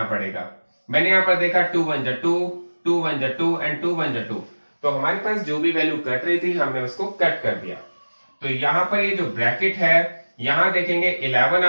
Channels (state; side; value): inverted; both; correlation -1.00